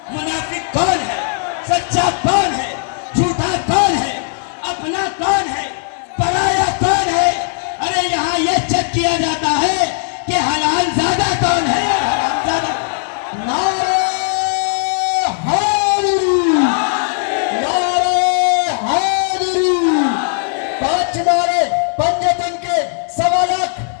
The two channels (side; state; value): right; silent; 55 dB below the other